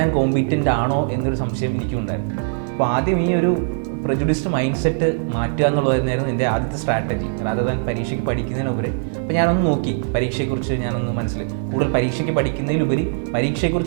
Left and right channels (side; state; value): left; silent; digital silence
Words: കോമ്പീറ്റൻ്റ് ആണോ എന്നൊരു സംശയം എനിക്കും ഉണ്ടായിരുന്നു. അപ്പോൾ ആദ്യം ഈ ഒരു പ്രജുഡിസ്ഡ് മൈൻഡ് സെറ്റ് മാറ്റുക എന്നുള്ളതായിരുന്നു എൻ്റെ ആദ്യത്തെ സ്ട്രാറ്റജി, റാദർ ദാൻ പരീക്ഷയ്ക്ക് പഠിക്കുന്നതിനുപരി. അപ്പോൾ ഞാനൊന്ന് നോക്കി പരീക്ഷയെക്കുറിച്ച് ഞാനൊന്ന് കൂടുതൽ പരീക്ഷയ്ക്ക് പഠിക്കുന്നതിലുപരി